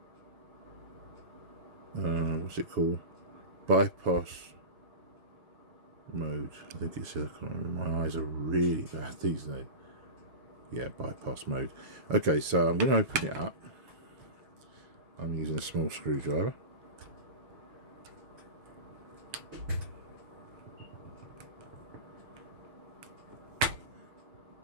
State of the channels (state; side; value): late; left; 7.1 ms